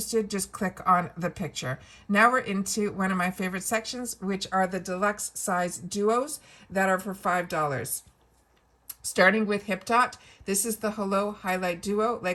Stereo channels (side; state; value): both; identical; correlation 1.00